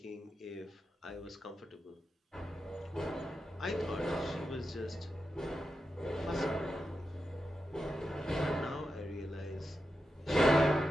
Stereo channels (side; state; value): both; normal; correlation 0.89